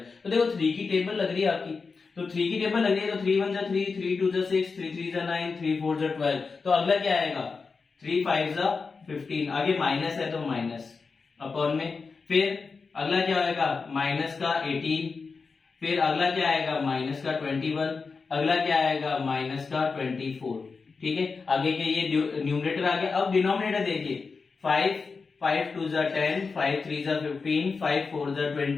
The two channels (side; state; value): right; quieter; 4.7 dB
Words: तो देखो 3 की टेबल लग रही है आपकी, तो 3 की टेबल लग रही है तो 3 1 3, 3 2 6, 3 3 9, 3 4 12। तो अगला क्या आएगा 3 5 15। आगे माइनस है तो माइनस अपॉन में, फिर अगला क्या आएगा माइनस का 18, फिर अगला क्या आएगा माइनस का 21, अगला क्या आएगा माइनस का 24। ठीक है, आगे के ये न्यूमरेटर आ गया। अब डिनोमिनेटर देखिए 5 5 2 जा 10, 5 3 जा 15, 5 4 जा